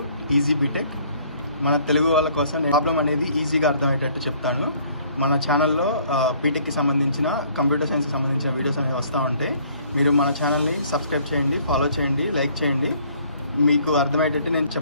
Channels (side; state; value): both; inverted; correlation -0.59